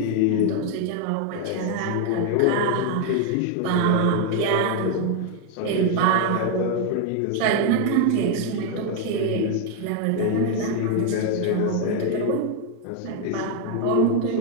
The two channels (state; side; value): different; both; correlation 0.01